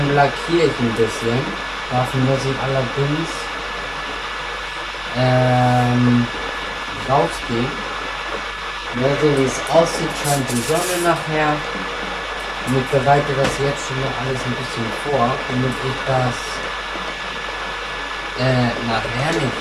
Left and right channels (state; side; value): identical; both; correlation 1.00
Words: lackiere ich ein bisschen. Dafür muss ich allerdings rausgehen. Ja, so wie es aussieht, scheint die Sonne nachher. Und ich bereite das jetzt schon mal alles ein bisschen vor, damit ich das nachher nicht